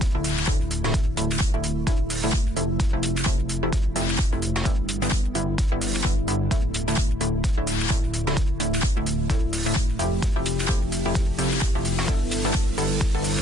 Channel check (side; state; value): both; normal; correlation 0.67